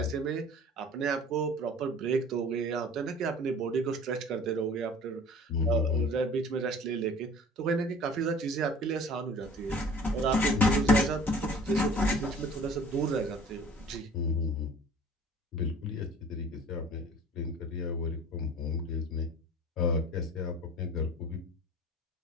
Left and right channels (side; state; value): both; normal; correlation 0.47